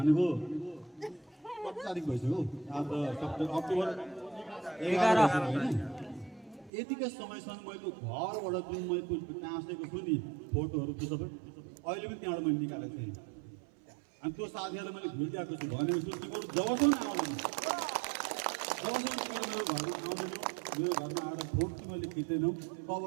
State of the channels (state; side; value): drops out; left; at 6.7 s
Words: 7 तारिक भइसक्यो। आज अक्टोबर 11 होइन। यतिकै समयसम्म मैले घरबाट जुन मैले टाँसेको छु नि फोटोहरू त्यो सबै अहिले पनि त्यहाँबाट मैले निकालेको थिएँ। अनि त्यो साथीहरूलाई मैले भुलिरहेको छु भनेको छु तिमीहरू जबसम्म आउँदैन जबसम्म तिमीहरू मेरो घरमा आउँदैनौ मेरो घरमा आएर फोटो मैले खिच्दैनौ